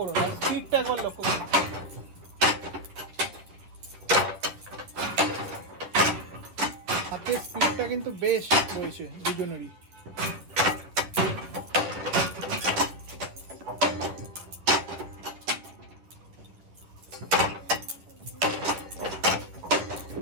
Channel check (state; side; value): late; left; 11 ms